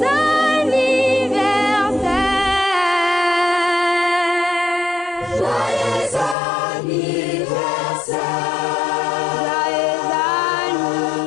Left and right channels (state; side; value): drops out; right; at 6.4 s